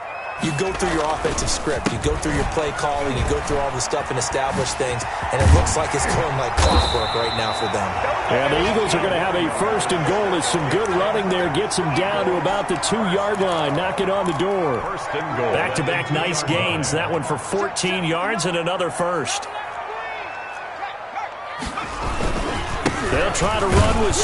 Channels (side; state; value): both; identical; correlation 1.00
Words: you go through your offensive script. You go through your play calling. You go through all the stuff and establish things. And it looks like it's going like clockwork right now for them. And the Eagles are going to have a 1st and goal as some good running there gets them down to about the 2-yard line. Knock it on the door. 1st and goal. Back-to-back nice gains. That one for 14 yards and another 1st. They'll try to run with